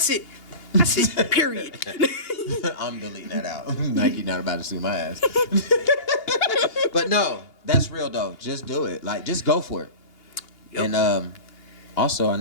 it. Period. I'm deleting that out. Nike not about to sue my ass. But no, that's real though. Just do it. Like, just go for it. Yep. And also, I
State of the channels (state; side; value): late; right; 2.8 ms